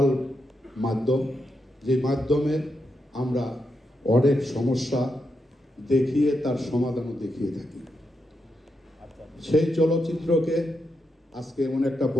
মাধ্যম, যে মাধ্যমে আমরা অনেক সমস্যা দেখিয়ে তার সমাধানও দেখিয়ে থাকি। সেই চলচ্চিত্রকে আজকে এমন একটা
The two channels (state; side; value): normal; both; correlation 0.84